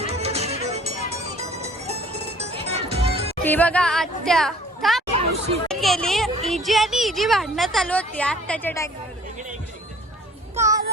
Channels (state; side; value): normal; both; correlation 0.52